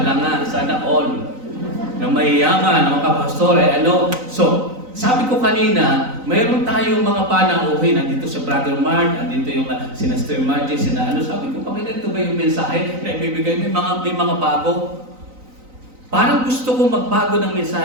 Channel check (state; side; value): late; left; 3.9 ms